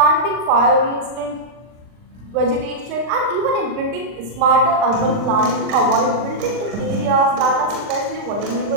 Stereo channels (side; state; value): left; late; 39 ms